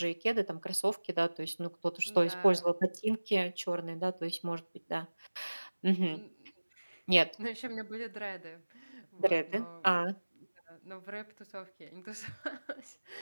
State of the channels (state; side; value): inverted; both; correlation -1.00